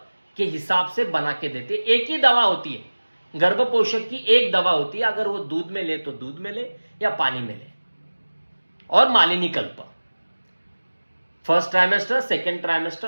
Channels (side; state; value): both; inverted; correlation -1.00